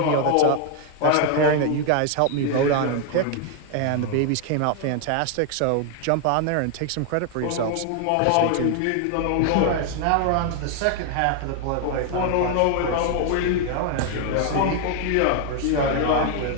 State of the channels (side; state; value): both; different; correlation 0.00